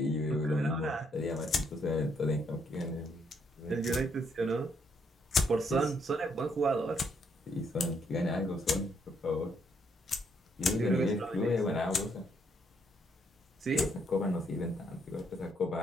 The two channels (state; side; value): normal; both; correlation 0.72